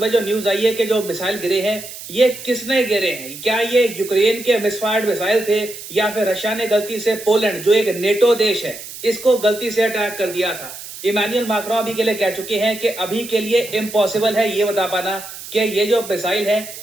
जो न्यूज आई है कि जो मिसाइल गिरे हैं ये किसने गिरे हैं। क्या ये यूक्रेन के मिसफायर्ड मिसाइल थे, या फिर रशिया ने गलती से पोलैंड जो एक नेटो देश है इसको गलती से अटैक कर दिया था। इमानुएल मैक्रोन अभी के लिए कह चुके हैं कि अभी के लिए इम्पॉसिबल है ये बता पाना कि ये जो मिसाइल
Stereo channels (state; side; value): noise; right; hiss, 13 dB below the sound